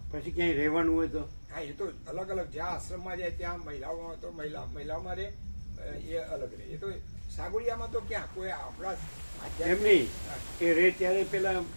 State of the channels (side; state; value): both; inverted; correlation -1.00